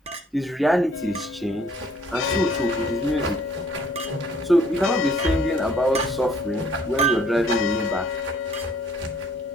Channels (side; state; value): both; normal; correlation 0.60